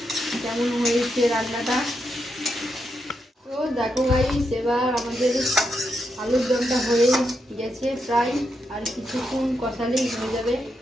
কেমন হয়েছে রান্নাটা। তো দেখো গাইস এবার আমাদের আলুর দমটা হয়ে গেছে প্রায়, আর কিছুক্ষণ কষালেই হয়ে যাবে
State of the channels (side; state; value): both; normal; correlation 0.83